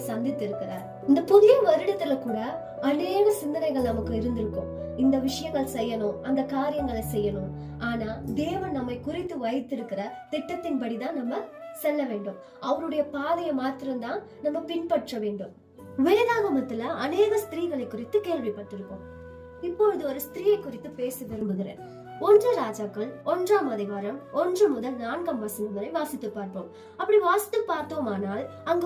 சந்தித்து இருக்கிறார். இந்த புதிய வருடத்துல கூட அநேக சிந்தனைகள் நமக்கு இருந்திருக்கும். இந்த விஷயங்கள் செய்யணும், அந்த காரியங்களை செய்யணும். ஆனா தேவன் நம்மை குறித்து வைத்திருக்கிற திட்டத்தின்படிதான் நம்ம செல்ல வேண்டும். அவருடைய பாதையை மாத்திரம்தான் நம்ம பின்பற்ற வேண்டும். வேதாகமத்துல அநேக ஸ்திரீகளை குறித்து கேள்விப்பட்டிருக்கோம். இப்பொழுது ஒரு ஸ்திரீயை குறித்து பேச விரும்புகிறேன். 1 ராஜாக்கள் 1ஆம் அதிகாரம் 1 முதல் 4ஆம் வசனம் வரை வாசித்து பார்ப்போம். அப்படி வாசித்து பார்த்தோமானால் அங்க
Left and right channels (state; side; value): identical; both; correlation 1.00